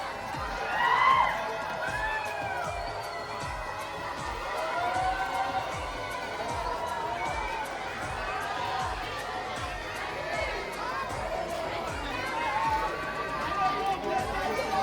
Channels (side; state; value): both; identical; correlation 1.00